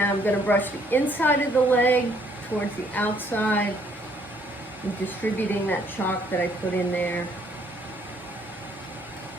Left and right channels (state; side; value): normal; both; correlation 0.65